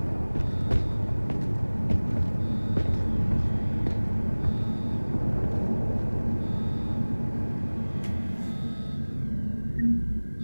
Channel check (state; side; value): inverted; both; correlation -1.00